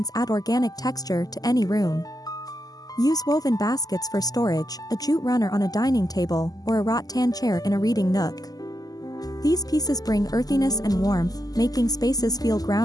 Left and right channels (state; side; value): late; right; 0.18 ms